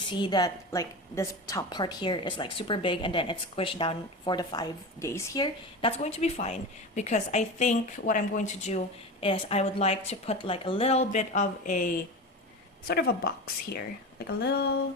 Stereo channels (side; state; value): both; normal; correlation 0.27